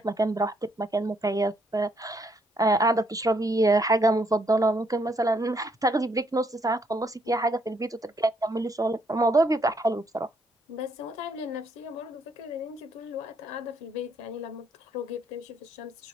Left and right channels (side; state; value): both; normal; correlation 0.71